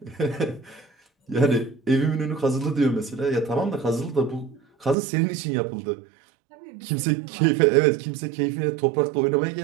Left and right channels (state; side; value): drops out; left; at 5.0 s